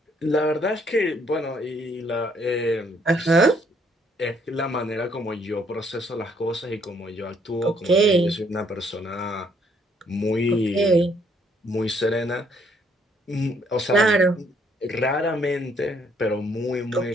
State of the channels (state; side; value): normal; both; correlation 0.67